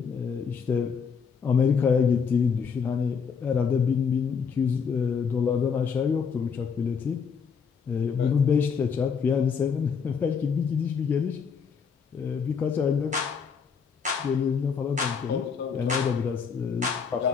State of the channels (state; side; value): quieter; right; 6.2 dB